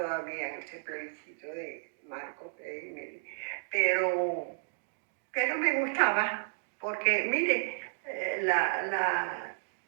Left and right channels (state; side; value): silent; left; digital silence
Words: en ese plebiscito de Marcos Pérez Jiménez. Pero me gustaba, porque mire,